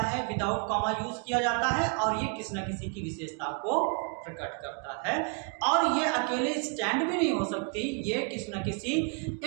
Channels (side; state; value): left; quieter; 34.8 dB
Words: विदाउट कॉमा यूज किया जाता है और ये किसी ना किसी की विशेषता को प्रकट करता है। और ये अकेले स्टैंड भी नहीं हो सकती, ये किसी ना किसी